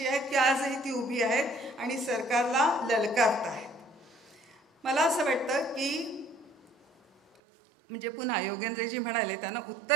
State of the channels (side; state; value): left; drops out; at 7.4 s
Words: आहेत की आजही ती उभी आहेत आणि सरकारला ललकारत आहेत. मला असं वाटतं की म्हणजे पुन्हा योगेंद्रजी म्हणाले, त्यांना